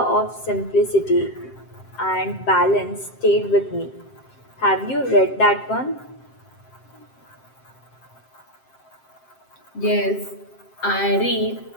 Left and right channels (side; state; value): right; late; 7.6 ms